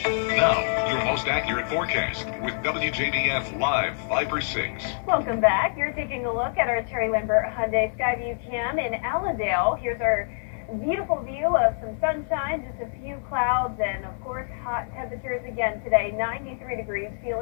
Now, your most accurate forecast with WJBF Live Viper 6. Welcome back. You're taking a look at our Terry Lambert Hyundai Skyview Cam in Allendale. Here's our beautiful view of some sunshine, just a few clouds, and of course hot temperatures again today. 93 degrees,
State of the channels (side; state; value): right; silent; digital silence